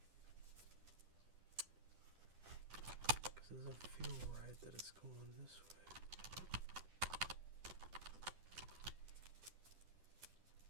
Because it doesn't feel right that it's going this way.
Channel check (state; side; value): late; left; 10 ms